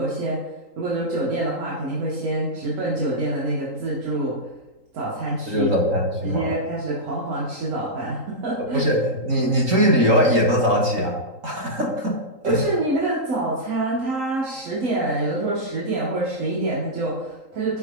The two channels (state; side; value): late; left; 3.8 ms